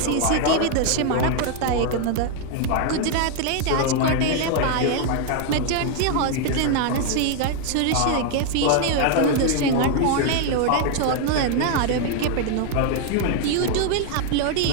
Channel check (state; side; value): different; both; correlation 0.00